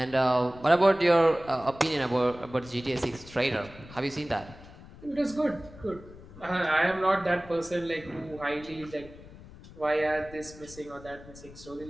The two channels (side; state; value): left; noise; rumble, 18 dB below the sound